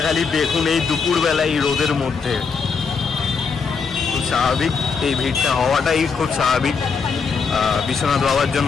খালি দেখুন এই দুপুরবেলা এই রোদের মধ্যে। খুব স্বাভাবিক, এই ভিড়টা হওয়াটাই খুব স্বাভাবিক। বিশ্বনাথ বাবার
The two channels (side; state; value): right; quieter; 5.4 dB